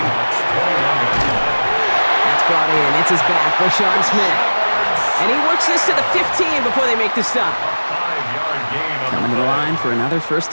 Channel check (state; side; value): inverted; both; correlation -1.00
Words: 21-yard line. That's brought in. It's his back, Rashawn Smith. And he works this to the 15 before they make the stop. 5-yard gain on Coming to the line for another 1st